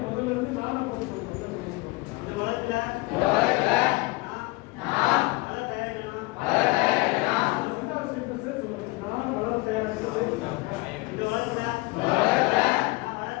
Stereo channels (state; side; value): quieter; right; 23.1 dB